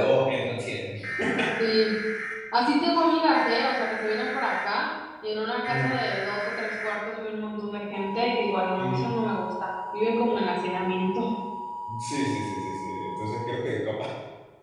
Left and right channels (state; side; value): identical; both; correlation 1.00